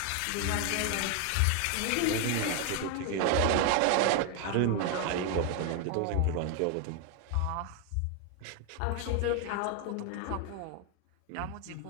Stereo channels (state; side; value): different; both; correlation 0.01